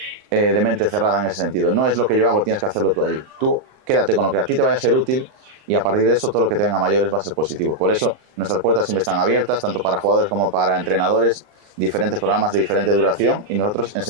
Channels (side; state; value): left; late; 38 ms